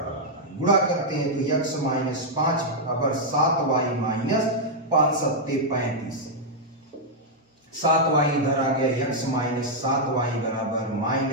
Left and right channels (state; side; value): normal; both; correlation -0.04